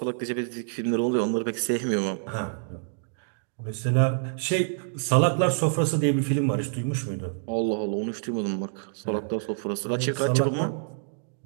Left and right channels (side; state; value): left; silent; digital silence